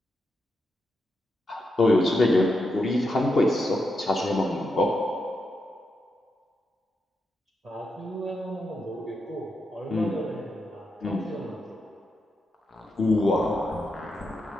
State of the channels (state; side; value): normal; both; correlation 0.85